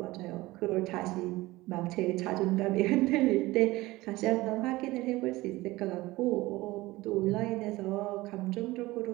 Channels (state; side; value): quieter; left; 19.4 dB